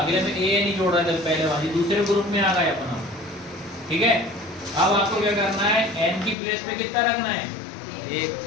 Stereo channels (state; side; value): drops out; right; at 6.4 s